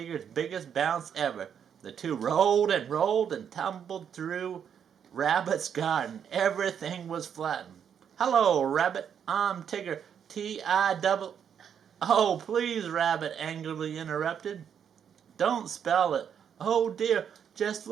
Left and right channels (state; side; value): quieter; left; 8.1 dB